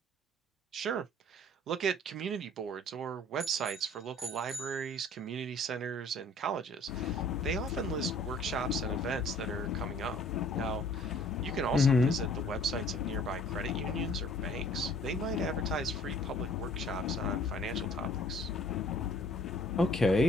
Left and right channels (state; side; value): normal; both; correlation 0.54